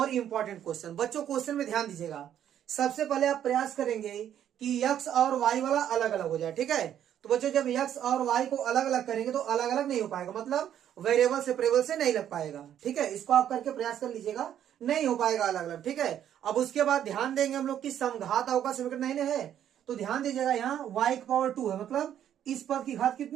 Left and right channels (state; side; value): quieter; left; 10.3 dB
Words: इम्पोर्टेंट क्वेश्चन। बच्चों क्वेश्चन में ध्यान दीजिएगा। सबसे पहले आप प्रयास करेंगे कि x और y वाला अलग अलग हो जाए, ठीक है। तो बच्चों जब x और y को अलग अलग करेंगे तो अलग अलग नहीं हो पाएगा, मतलब वेरिएबल सेपरेबल से नहीं लग पाएगा, ठीक है। इसको आप करके प्रयास कर लीजिएगा, नहीं हो पाएगा अलग अलग, ठीक है। अब उसके बाद ध्यान देंगे हम लोग की समघात अवकल समीकरण नहीं है, तो ध्यान दीजिएगा यहाँ y की पावर 2 है, मतलब इस पद की घात